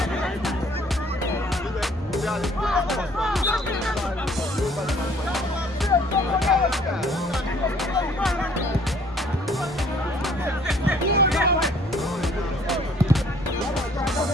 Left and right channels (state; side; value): normal; both; correlation 0.58